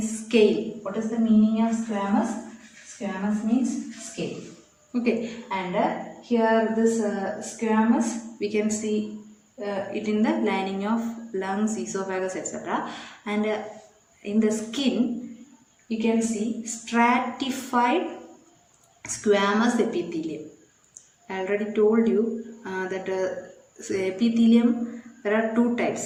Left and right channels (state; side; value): identical; both; correlation 1.00